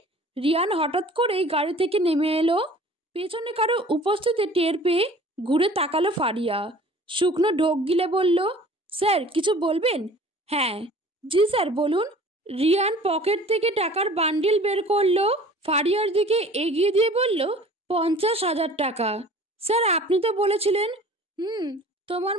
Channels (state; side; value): normal; both; correlation 0.47